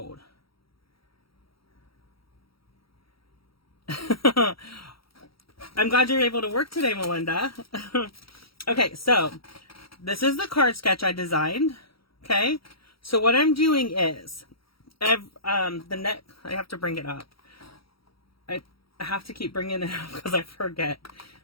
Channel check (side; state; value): right; late; 0.75 ms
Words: I'm glad you're able to work today, Melinda. Okay, so this is the card sketch I designed. Okay, so what I'm doing is, I have to bring it up. I have to keep bringing it up because I forget.